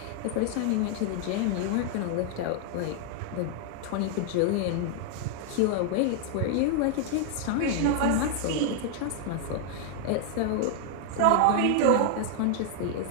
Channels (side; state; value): both; different; correlation 0.00